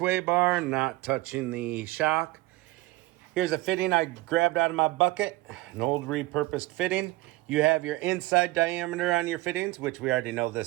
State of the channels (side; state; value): left; quieter; 19.6 dB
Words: bar, not touching the shock. Here's a fitting I grabbed out of my bucket, an old repurposed fitting. You have your inside diameter on your fittings, which we already know